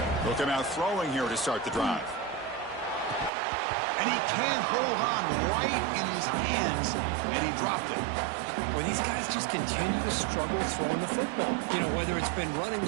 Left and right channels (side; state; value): left; drops out; at 3.3 s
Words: Looking out throwing here to start the drive. And he can't hold on right in his hands, and he dropped it. Well, these guys just continue to struggle throwing the football. You know, whether it's been running